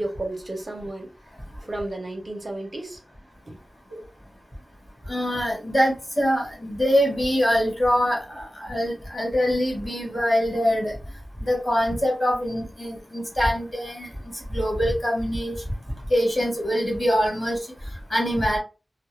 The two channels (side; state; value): both; normal; correlation 0.94